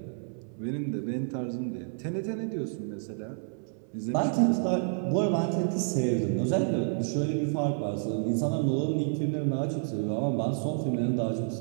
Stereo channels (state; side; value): silent; left; 58 dB below the other